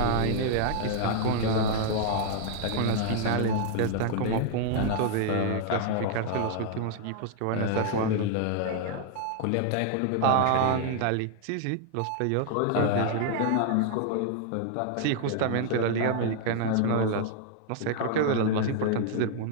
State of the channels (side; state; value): both; different; correlation 0.00